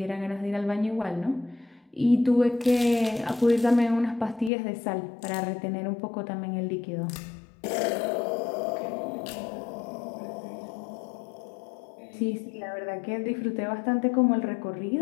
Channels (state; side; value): drops out; right; at 4.5 s